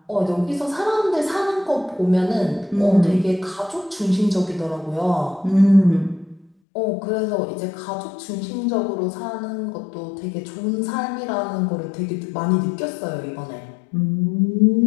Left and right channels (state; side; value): drops out; right; at 6.5 s